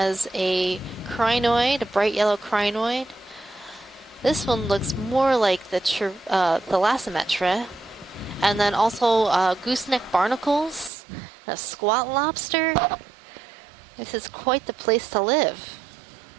a crinoid, a bright yellow crinoid. This one looks more like the thalassometra, and then also gooseneck barnacles, a squat lobster. This is quite the place to live.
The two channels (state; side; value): drops out; left; at 10.9 s